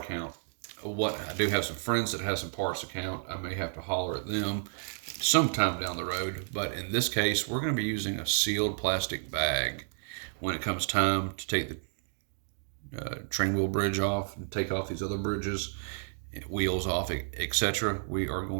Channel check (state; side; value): silent; left; digital silence